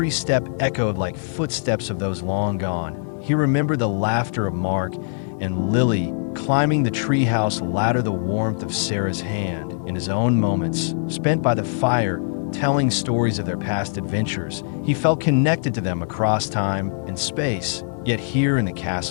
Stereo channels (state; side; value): silent; right; 64 dB below the other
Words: step echoed like footsteps of those long gone. He remembered the laughter of Mark and Lily climbing the treehouse ladder, the warmth of Sarah's hand in his own moments spent by the fire, telling stories of their past adventures. He felt connected to them across time and space. Yet here in the